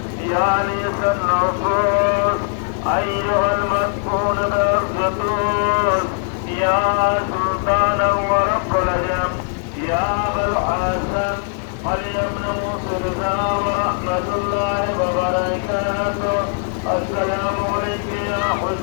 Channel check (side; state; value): right; silent; 57 dB below the other